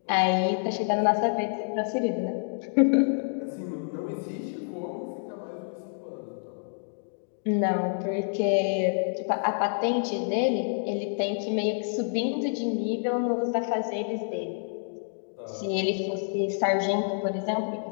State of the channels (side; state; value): right; silent; digital silence